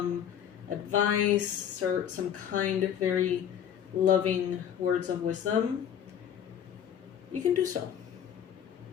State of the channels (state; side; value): quieter; right; 9.1 dB